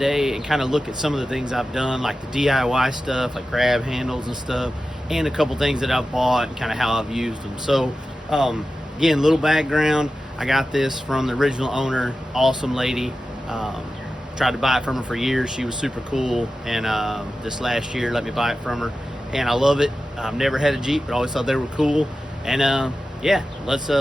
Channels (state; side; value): normal; both; correlation 0.94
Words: and kind of look at some of the things I've done, like the DIY stuff, like grab handles and stuff, and a couple things that I've bought and kind of how I've used them. So again, little background, I got this from the original owner, awesome lady. Tried to buy it from her for years. She was super cool, and this last year let me buy it from her, and I love it. I've never had a Jeep, but always thought they were cool. And yeah, let's